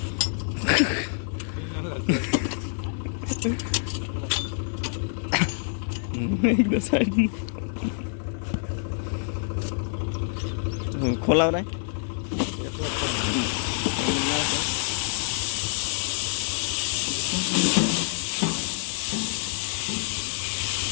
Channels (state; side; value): silent; right; digital silence